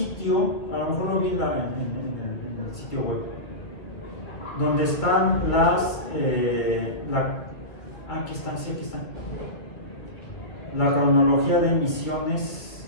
a lo mejor lo vi en el sitio web, donde están aquí están, sí, aquí están. La cronología de misiones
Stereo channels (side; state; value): right; late; 1.9 ms